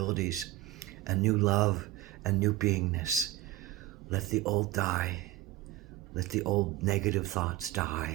and new love and new beingness. Let the old die. Let the old negative thoughts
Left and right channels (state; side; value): quieter; left; 15.5 dB